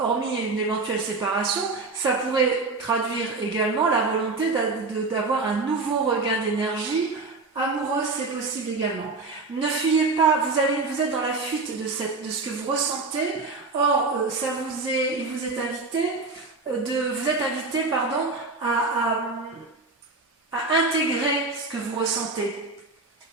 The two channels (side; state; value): left; quieter; 3.8 dB